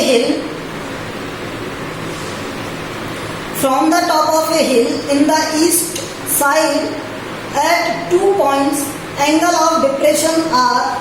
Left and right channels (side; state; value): both; identical; correlation 1.00